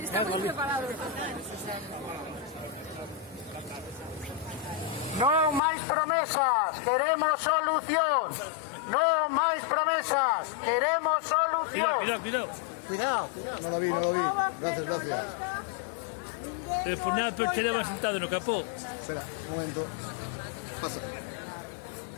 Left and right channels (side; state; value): right; drops out; at 5.6 s